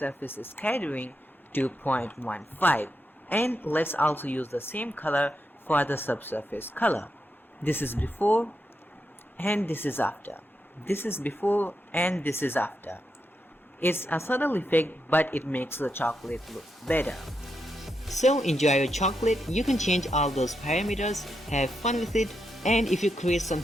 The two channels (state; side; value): normal; both; correlation 0.84